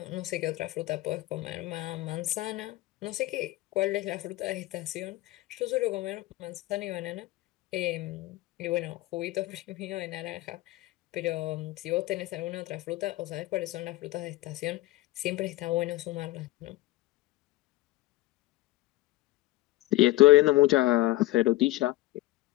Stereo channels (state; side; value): quieter; right; 18.3 dB